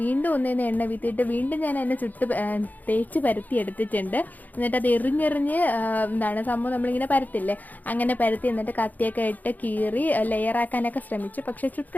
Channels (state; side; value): late; right; 0.082 ms